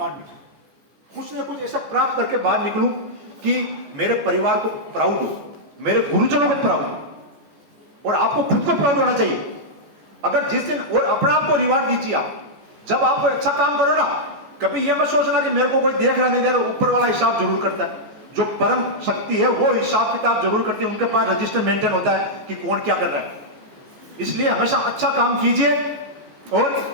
निकलूं, कुछ ना कुछ ऐसा प्राप्त करके बाहर निकलूं कि मेरे परिवार को प्राउड हो, मेरे गुरुजनों को प्राउड हो, और आपको खुद को प्राउड होना चाहिए। अगर जिस दिन और अपने आप को रिवार्ड दीजिए आप, जब आप कोई अच्छा काम करो ना, कभी यह मत सोचना कि मेरे को कोई देख रहा नहीं दे रहा, ऊपर वाला हिसाब जरूर करता है। जो परम शक्ति है वो हिसाब किताब जरूर करती है, उनके पास रजिस्टर मेंटेन होता है कि कौन क्या कर रहा है। इसलिए हमेशा अच्छा काम कीजिए और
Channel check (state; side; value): late; left; 14 ms